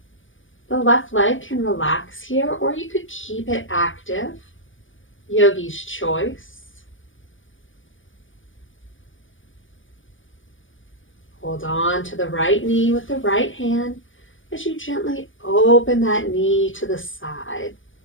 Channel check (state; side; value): late; right; 0.57 ms